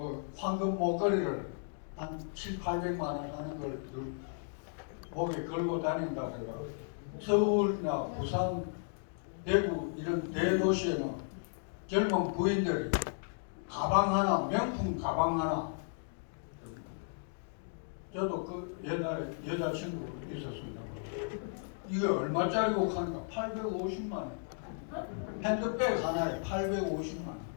황금 목걸이를 한 7, 800만 원 하는 걸 목에 걸고 다닌다 그래가 서울이나 부산, 대구 이런 대도시에는 젊은 부인들이 가방 하나, 명품 가방 하나. 저도 그 옛날에 여자친구 있었습니다. 이게 얼마짜리고 하니까 850만 원. 핸드백 하나에 850만 원.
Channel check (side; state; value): right; silent; digital silence